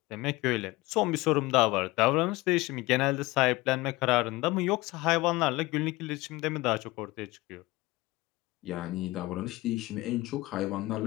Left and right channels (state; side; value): quieter; right; 20.8 dB